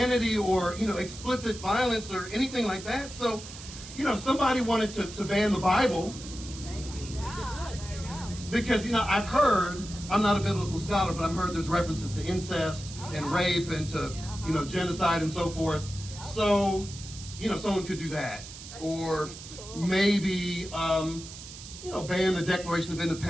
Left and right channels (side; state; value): right; noise; hiss, 14 dB below the sound